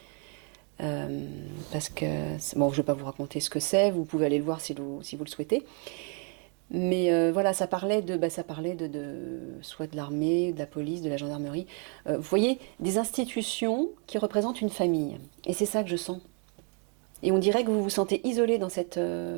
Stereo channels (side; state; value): left; quieter; 38.7 dB